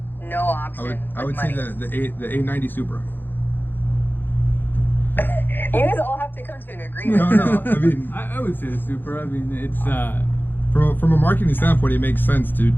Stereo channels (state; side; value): late; right; 0.094 ms